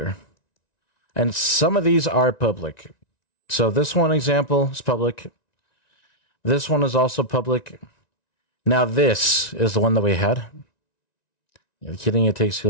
And some of these are public. So this one example is public. This one is also public. Now this is the one that we had. You're kidding, it takes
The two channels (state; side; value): late; right; 1.9 ms